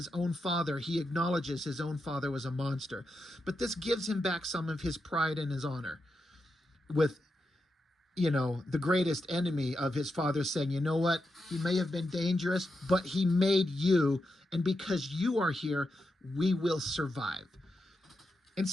own father, he acknowledges his own father was a monster. But this gives him back some of his pride and his honor with, the greatest enemy of his father saying, you know what? He may have been dangerous, but he made you. And because you are here, we will survive. And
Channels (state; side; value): normal; both; correlation 0.86